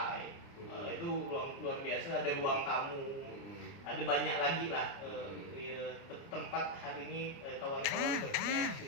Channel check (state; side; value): late; right; 29 ms